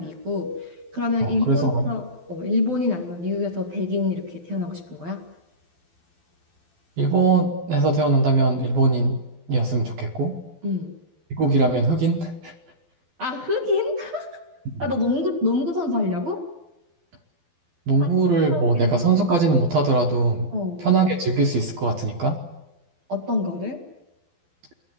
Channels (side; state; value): left; late; 12 ms